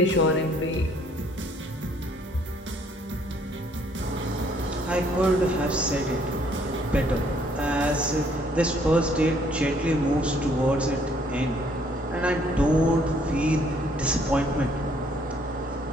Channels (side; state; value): both; normal; correlation 0.64